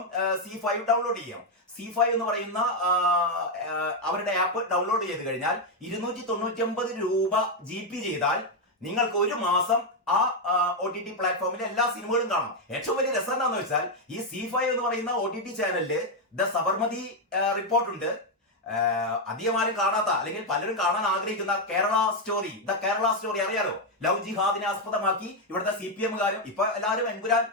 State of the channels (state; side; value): normal; both; correlation 0.03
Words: C5 ഡൗൺലോഡ് ചെയ്യാം. C5 എന്ന് പറയുന്ന അവരുടെ ആപ്പ് ഡൗൺലോഡ് ചെയ്ത് കഴിഞ്ഞാൽ 299 രൂപ GB ചെയ്താൽ നിങ്ങൾക്ക് ഒരു മാസം ആ OTT പ്ലാറ്റ്ഫോമിലെ എല്ലാ സിനിമകളും കാണാം. ഏറ്റവും വലിയ രസം എന്താണെന്ന് വെച്ചാൽ ഈ C5 എന്ന് പറയുന്ന OTT ചാനലില് ദ സബർമതി റിപ്പോർട്ട് ഉണ്ട്. അധികം ആരും കാണാത്ത, അല്ലെങ്കിൽ പലരും കാണാൻ ആഗ്രഹിക്കുന്ന കേരള സ്റ്റോറി അറിയാലോ. ലവ് ജിഹാദിനെ ആസ്പദമാക്കി ഇവിടുത്തെ CPM-കാരും ഇപ്പൊ എല്ലാവരും എമ്പുരാൻ